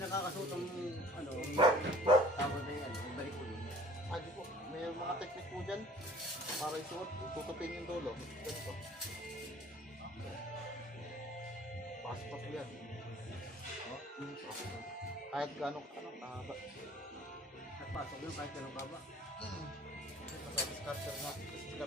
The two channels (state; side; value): normal; both; correlation 0.50